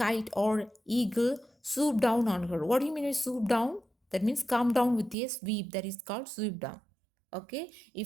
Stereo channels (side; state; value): left; drops out; at 5.2 s